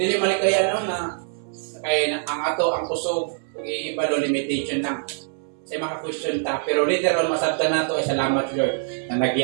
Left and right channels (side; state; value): left; silent; 61 dB below the other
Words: malikaya na Kaya ang ato, ang kusog, i-ibalo limitation lang. Sa mga question ta, pero literal masabta na to ay salamat Lord na